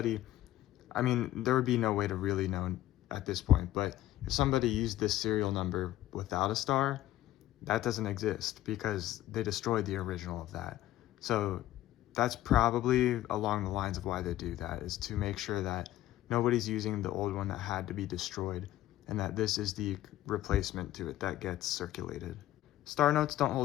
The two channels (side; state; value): right; quieter; 14.3 dB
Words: I mean, there would be no way to really know at this point, but if somebody used this serial number without a star, that doesn't exist because they destroyed the original of that. So that's probably along the lines of why they do that, is to make sure that nobody's using the old one that had to be destroyed, and that this is the replacement to it that gets circulated. Star notes don't